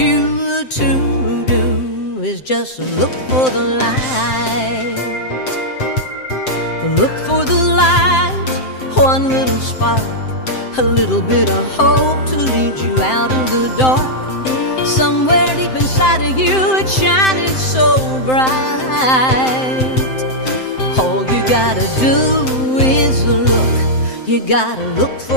to do is just look for the light. Look for the light, one little spark, a little bit of hope to lead you out of the dark. Somewhere deep inside of you, it's shining so bright. All you gotta do is look. You gotta look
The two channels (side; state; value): right; late; 7.7 ms